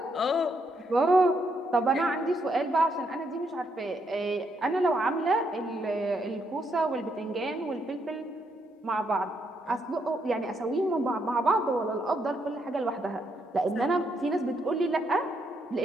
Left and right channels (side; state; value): both; normal; correlation 0.76